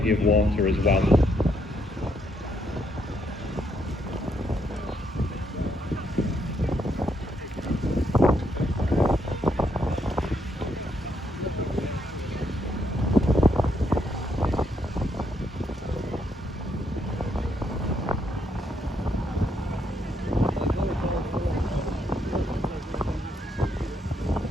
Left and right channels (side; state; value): both; normal; correlation 0.75